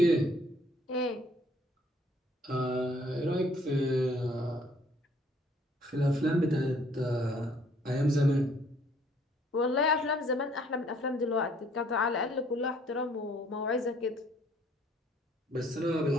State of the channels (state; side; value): normal; both; correlation 0.61